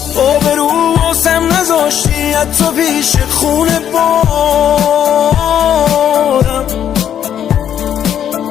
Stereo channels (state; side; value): quieter; right; 9.7 dB